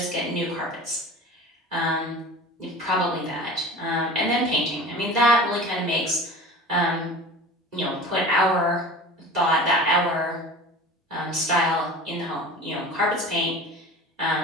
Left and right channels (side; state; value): both; normal; correlation 0.37